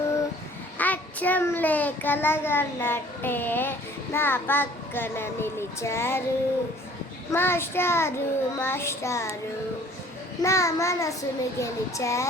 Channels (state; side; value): normal; both; correlation 0.53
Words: అచ్చంలే కలగన్నట్టే నా పక్కన నిలిచారు మాస్టారు మాస్టారు నా మనసును